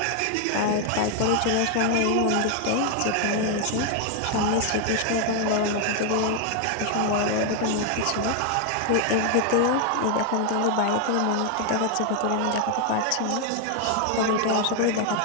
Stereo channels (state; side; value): different; both; correlation 0.00